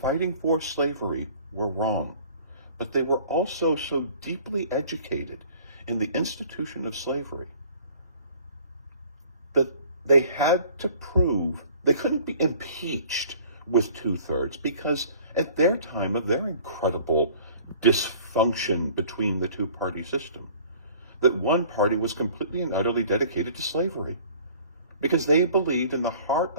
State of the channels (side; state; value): both; inverted; correlation -0.50